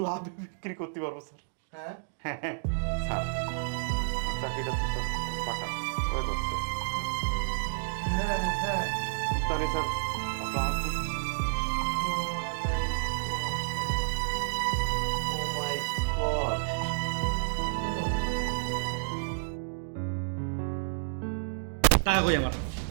লাভে বিক্রি করতে পারবো স্যার। হ্যাঁ হ্যাঁ হ্যাঁ স্যার, চাকরিটা তো স্যার পাকা হয়ে যাচ্ছে। হ্যাঁ হ্যাঁ। তাহলে স্যার আসসালামু আলাইকুম। ও মাই গড, টাকা কই আমার?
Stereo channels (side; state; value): left; silent; digital silence